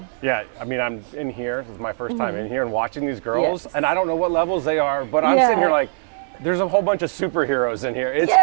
Yeah, I mean, I'm in here. This is my first time in here and watching these girls, and I don't know what levels they are, but I'm sitting here like, there's a whole bunch of superheroes in here. It's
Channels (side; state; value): left; silent; 62 dB below the other